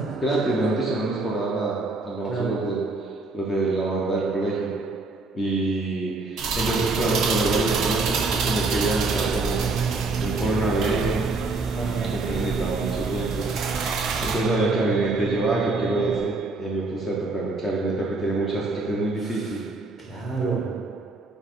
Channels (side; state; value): left; quieter; 3.3 dB